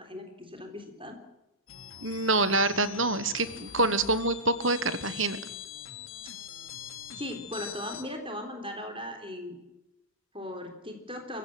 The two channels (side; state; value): both; normal; correlation -0.16